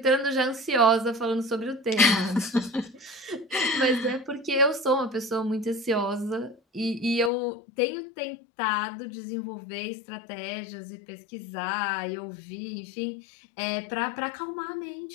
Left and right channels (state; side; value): drops out; right; at 7.3 s